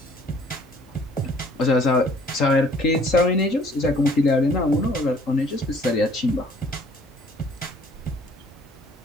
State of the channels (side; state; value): both; normal; correlation 0.57